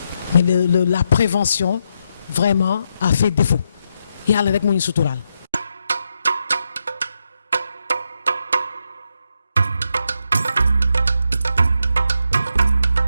mais la prévention vraiment a fait défaut yàlla rek moo ñu suturaal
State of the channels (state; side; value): inverted; both; correlation -0.82